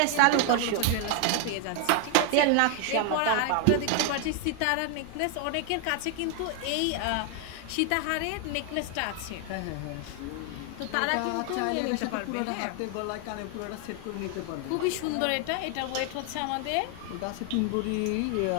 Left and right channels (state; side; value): different; both; correlation 0.00